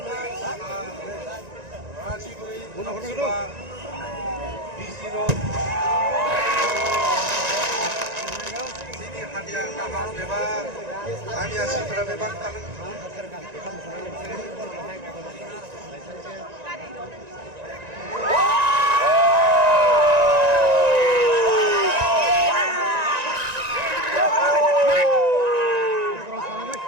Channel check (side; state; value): left; late; 1.9 ms